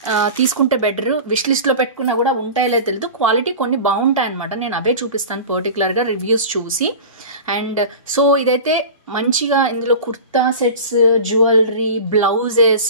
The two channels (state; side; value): inverted; both; correlation -0.33